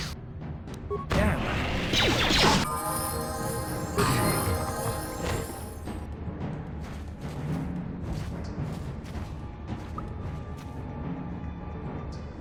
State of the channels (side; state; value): both; identical; correlation 1.00